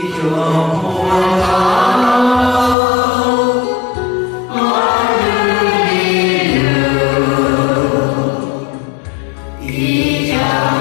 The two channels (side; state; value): right; drops out; at 2.8 s